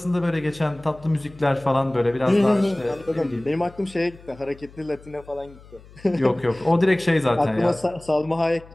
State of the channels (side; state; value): left; noise; hum, 22 dB below the sound